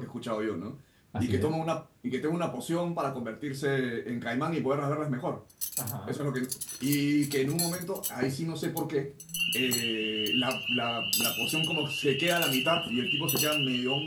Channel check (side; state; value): both; identical; correlation 1.00